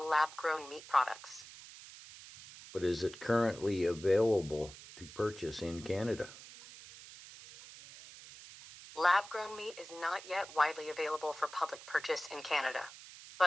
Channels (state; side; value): noise; right; hiss, 16 dB below the sound